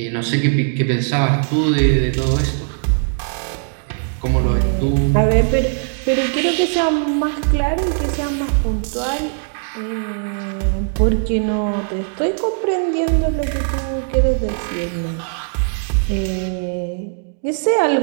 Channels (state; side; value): silent; left; digital silence